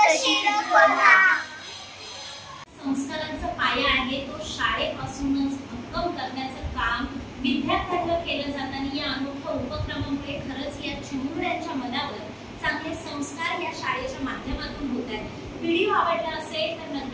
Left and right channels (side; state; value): both; identical; correlation 1.00